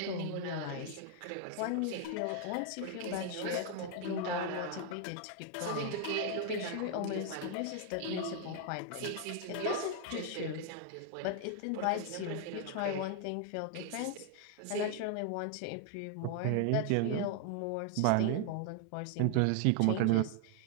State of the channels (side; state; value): both; different; correlation 0.00